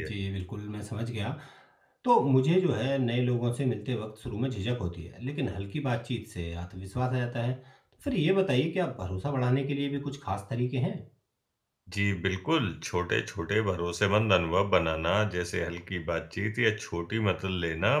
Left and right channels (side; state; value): both; identical; correlation 1.00